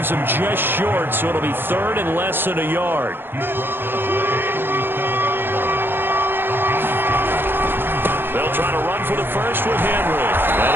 him just short, so it'll be 3rd and less than a yard. They'll They'll try to run for the first with Henry.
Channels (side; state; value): left; late; 0.099 ms